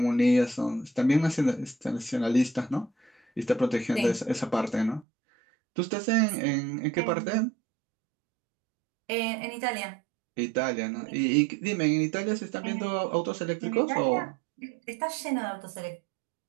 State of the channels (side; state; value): left; drops out; at 5.1 s